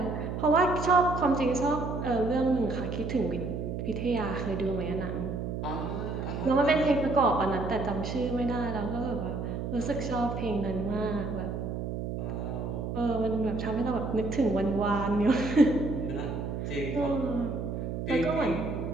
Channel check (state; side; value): noise; right; hum, 4 dB below the sound